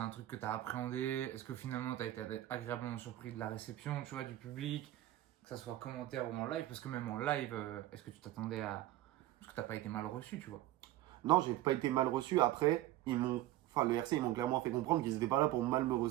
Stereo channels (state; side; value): quieter; left; 15.1 dB